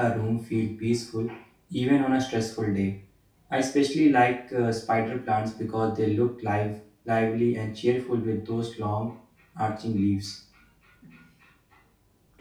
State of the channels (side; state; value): both; identical; correlation 1.00